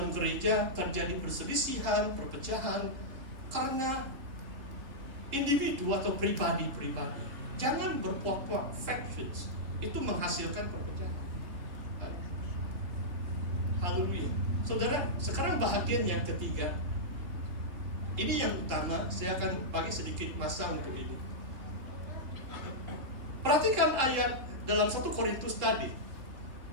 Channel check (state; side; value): late; left; 3.7 ms